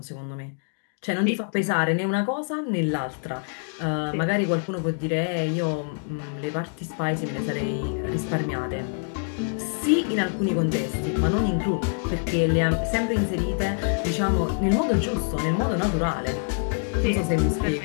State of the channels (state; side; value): silent; right; 57 dB below the other